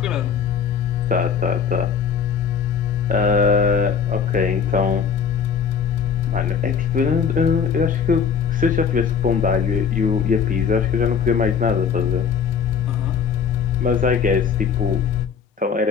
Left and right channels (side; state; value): right; quieter; 6.7 dB